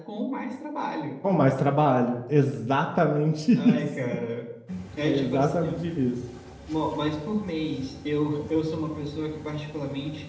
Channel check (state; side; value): identical; both; correlation 1.00